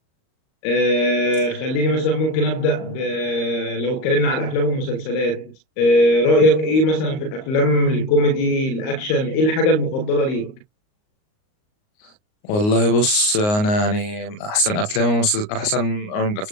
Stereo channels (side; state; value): right; late; 38 ms